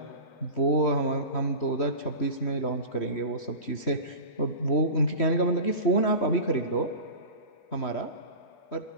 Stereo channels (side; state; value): right; late; 3.1 ms